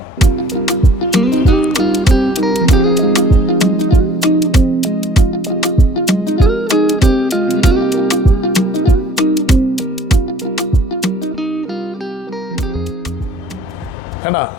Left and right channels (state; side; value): normal; both; correlation 0.54